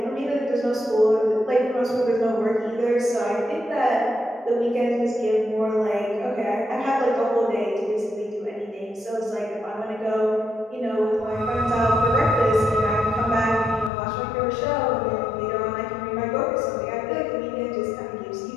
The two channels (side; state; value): right; drops out; at 13.9 s